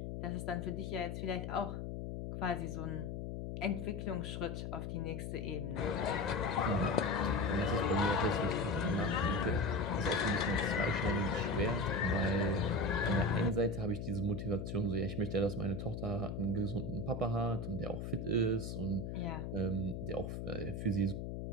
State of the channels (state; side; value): noise; left; hum, 5 dB below the sound